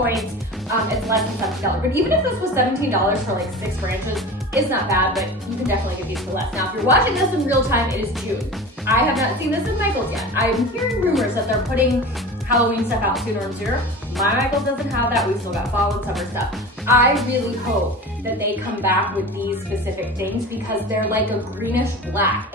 it's less than $17. But even if this was $17 for like 6 branches, it's not bad, but you can definitely get these for less. Now, if you're watching this in real time, it is June. I have not seen this in Michael's yet. I'm hearing rumors that they're putting Halloween stuff out sooner and sooner. My Michael's doesn't have that. We've still got fall and summer stuff. I really hope that they come back with these specific things because they're like a greenish black,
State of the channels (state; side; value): normal; both; correlation 0.33